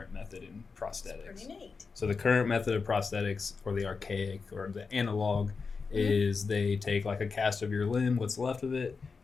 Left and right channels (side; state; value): right; quieter; 4.9 dB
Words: method in prosthetics. Pretty neat. So the current method of prosthetics, or the archaic or the analog, is they take like a cast of your limb, what's left of it,